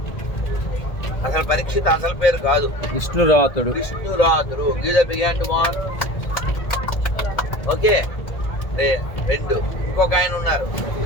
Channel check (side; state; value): right; late; 1.8 ms